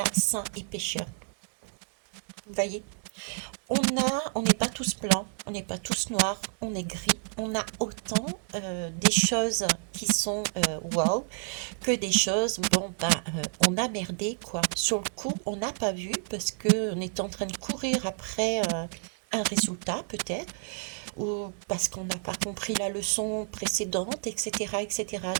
saint et pécheur. Vous voyez, on n'est pas tous blancs, on n'est pas tous noirs, on est gris. On a autant des choses qui sont wow que des choses, bon, on a merdé, quoi. Sur le coup, on n'a pas vu parce qu'on est en train de courir après un résultat, peut-être, ou parce qu'on n'a pas compris la leçon précédente, etc., etc.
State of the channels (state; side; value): silent; left; digital silence